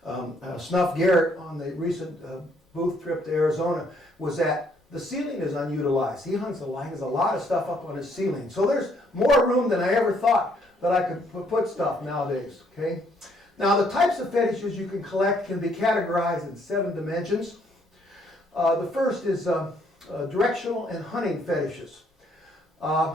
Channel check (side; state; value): both; normal; correlation 0.68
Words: Snuff Garrett, on the recent booth trip to Arizona, was that the ceiling is unutilized. He hangs a lot of stuff up on his ceiling. So there's more room than I ever thought that I could put stuff nowadays. Okay. Now the types of fetishes you can collect can be categorized in 7 dimensions. The first is directional and hunting fetishes.